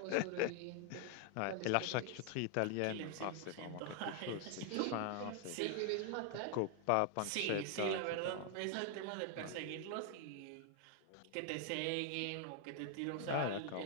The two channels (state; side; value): different; both; correlation 0.00